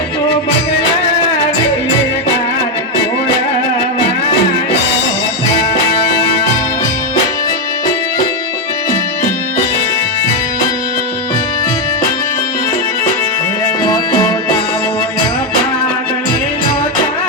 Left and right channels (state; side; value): normal; both; correlation 0.04